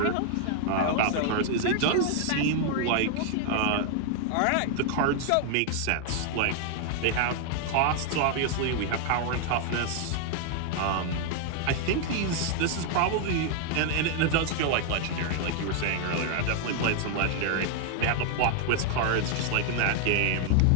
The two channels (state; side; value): different; both; correlation 0.00